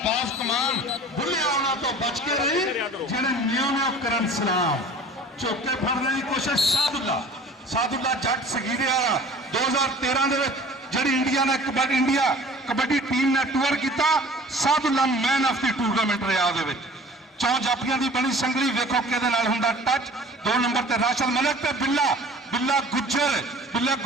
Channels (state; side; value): normal; both; correlation 0.46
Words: ਬਾਜ਼ ਕਮਾਨ। ਬੁੱਲੇ ਆਉਣਾ ਤੋਂ ਬਚ ਕੇ ਰਹੀ ਜਿਹੜੇ ਨਿਉ ਕਰਨ ਸਲਾਮ। ਝੋਕੇ ਫੜਨ ਦੀ ਕੋਸ਼ਿਸ਼ ਸਾਦੁੱਲਾ ਜੱਟ ਸਗੀਰੇ ਵਾਲਾ 2013 ਦੇ ਵਿੱਚ ਜਿਹੜੀ ਇੰਡੀਆ ਨੇ ਕਬੱਡੀ ਟੀਮ ਨੇ ਟੂਰ ਕੀਤਾ, Sadullah man of the tournament ਰਿਹਾ। ਉਹਦੇ ਵਿੱਚ 4 ਜਾਫੀਆਂ ਦੀ ਬਣੀ ਸੰਗਲੀ, ਵੇਖੋ ਕਿਹਦੇ ਨਾਲ ਹੁੰਦਾ ਟੱਚ। 2 ਨੰਬਰ ਤੇ ਰਾਸ਼ਦ ਮਲਿਕ ਤੇ ਬਿੱਲਾ